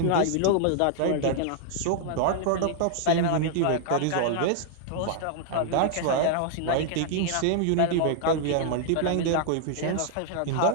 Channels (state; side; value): different; both; correlation 0.00